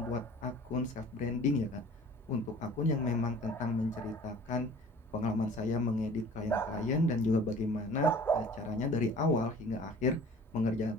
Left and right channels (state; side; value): normal; both; correlation 0.47